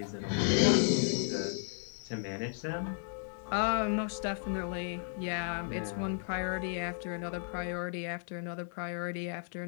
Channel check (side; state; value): right; silent; 55 dB below the other